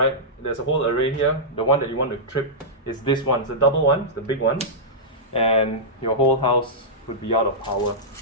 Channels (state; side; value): normal; both; correlation -0.12